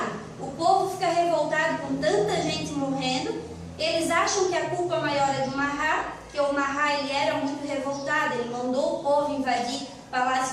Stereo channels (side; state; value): both; identical; correlation 1.00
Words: O povo fica revoltado com tanta gente morrendo. Eles acham que a culpa maior é do Marat, que o Marat ele era muito revoltado, ele mandou o povo invadir o